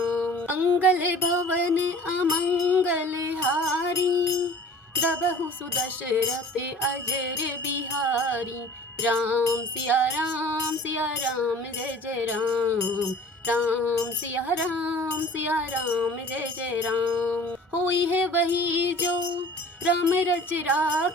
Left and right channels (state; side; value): normal; both; correlation 0.45